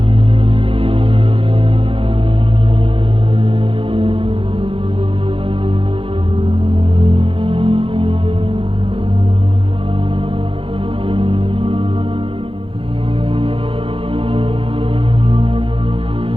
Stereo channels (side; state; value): left; late; 0.26 ms